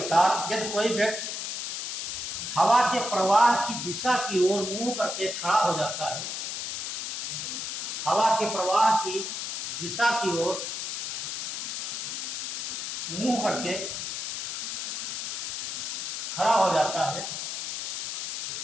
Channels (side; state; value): left; noise; hiss, 3 dB below the sound